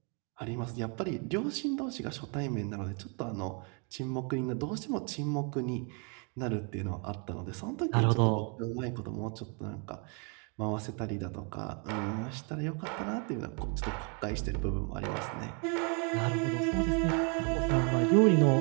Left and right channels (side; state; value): left; quieter; 36.1 dB